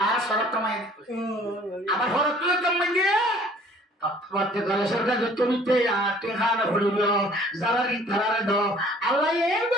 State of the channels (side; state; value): both; normal; correlation 0.54